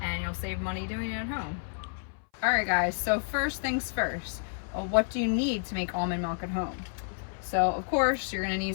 and you'll save money doing it at home. Alright guys, so first things first, what do you need to make almond milk at home? So of course you're going to need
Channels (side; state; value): right; silent; 58 dB below the other